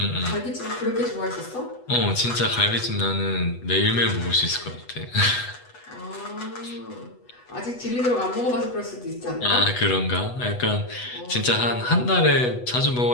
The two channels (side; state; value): right; late; 8.1 ms